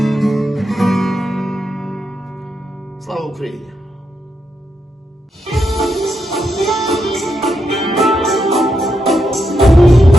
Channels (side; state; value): both; normal; correlation 0.83